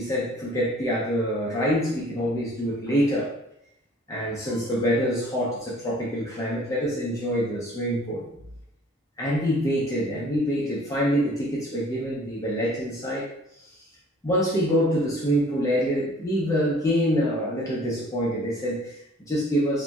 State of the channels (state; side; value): normal; both; correlation 0.53